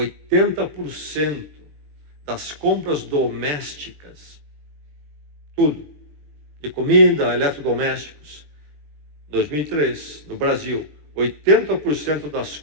das compras domésticas, tudo, de comida, eletrodomésticos, 2003, no Brasil, 80% das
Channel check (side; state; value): left; late; 20 ms